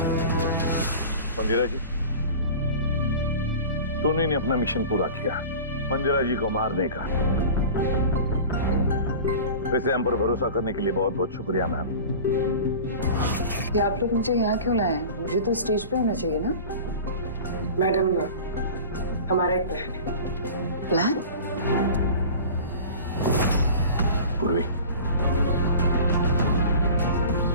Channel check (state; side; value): inverted; both; correlation -0.37